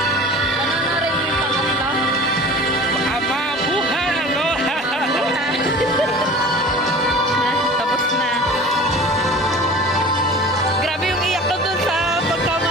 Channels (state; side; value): normal; both; correlation 0.40